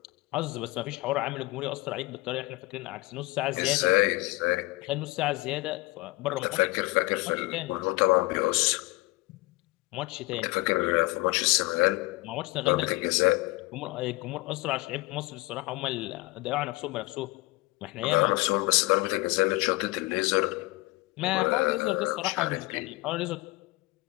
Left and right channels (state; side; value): quieter; right; 22.0 dB